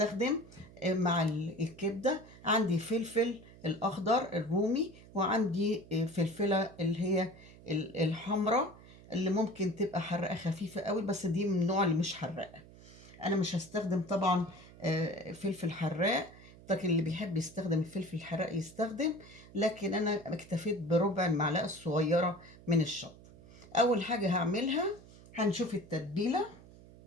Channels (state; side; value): noise; right; hum, 21 dB below the sound